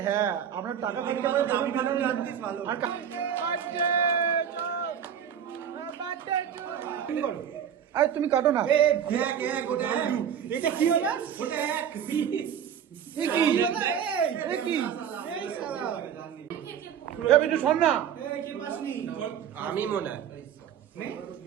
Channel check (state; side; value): quieter; left; 8.7 dB